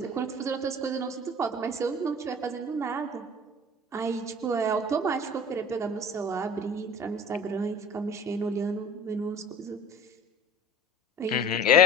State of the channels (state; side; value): normal; both; correlation 0.41